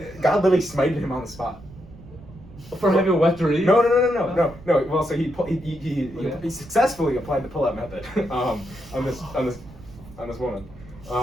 God literally smited him on the spot. For having a wet dream? No. Well, so Yeah. he successfully applied the pull-out method on this woman,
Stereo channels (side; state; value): right; noise; rumble, 19 dB below the sound